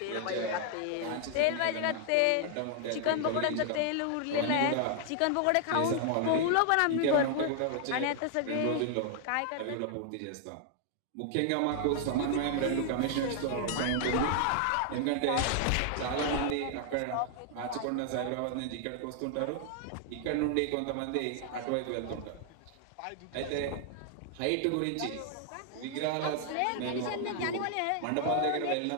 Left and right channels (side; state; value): both; different; correlation 0.00